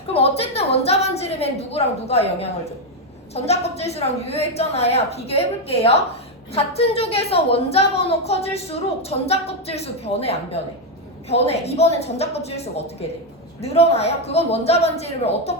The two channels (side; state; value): both; normal; correlation 0.04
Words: 그럼 어쨌든 원자 반지름엔 누구랑 누가 영향을 줘? 전자 껍질수랑 유효액 전화야. 비교해 볼게요. 같은 족에서 원자 번호 커질수록 전자 껍질수 변해 안 변해? 변해. 이번엔 전자 껍질수가 어떻게 돼? 늘어나요? 그건 원자 반지름을